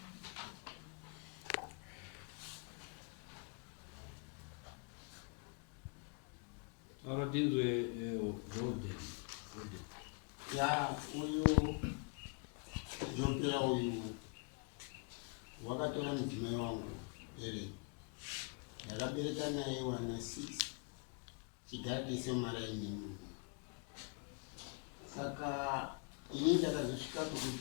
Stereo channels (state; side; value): quieter; right; 34.4 dB